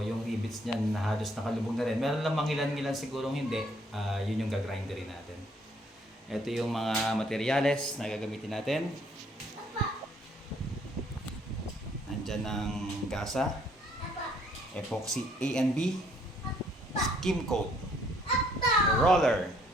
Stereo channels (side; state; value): both; normal; correlation 0.65